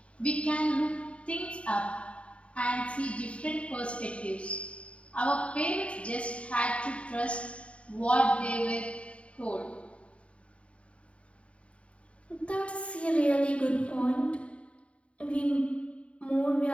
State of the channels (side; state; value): right; late; 0.062 ms